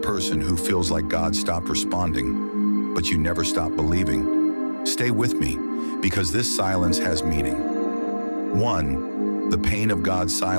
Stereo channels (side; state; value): both; inverted; correlation -1.00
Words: who feels like God stopped responding, but you never stop believing. Stay with me, because this silence has meaning. 1. The pain of God's